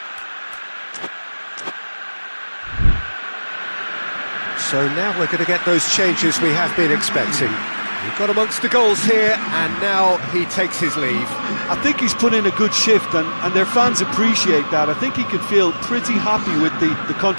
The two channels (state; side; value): inverted; both; correlation -1.00